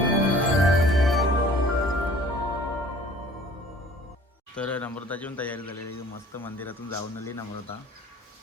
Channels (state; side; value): normal; both; correlation 0.50